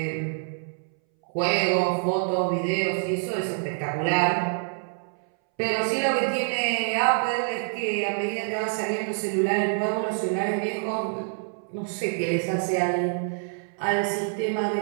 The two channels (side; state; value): left; silent; 61 dB below the other